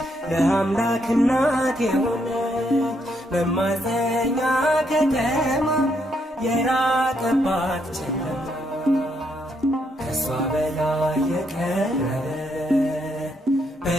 ለአምላክ እናት የሆነች መማፀኛ ከተማ የራቀባት ጨለማ ከሷ በላይ የቀረበ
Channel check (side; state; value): both; normal; correlation 0.76